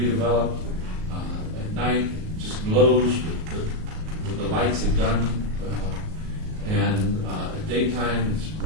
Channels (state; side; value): late; left; 38 ms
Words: At night, just glows with the lights they've done. And at daytime, it's